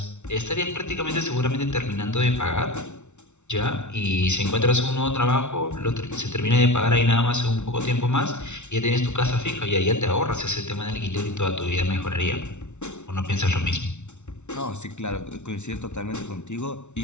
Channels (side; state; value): right; late; 0.83 ms